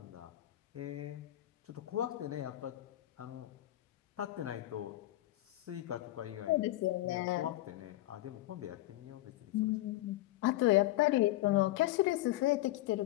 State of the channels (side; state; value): right; quieter; 16.2 dB